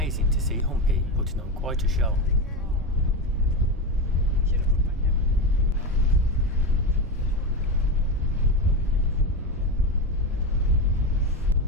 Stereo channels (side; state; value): right; noise; rumble, 12 dB below the sound